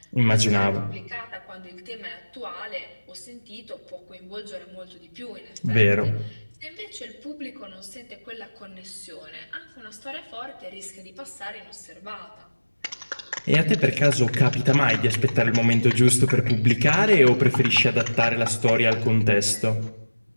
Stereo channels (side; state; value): both; inverted; correlation -1.00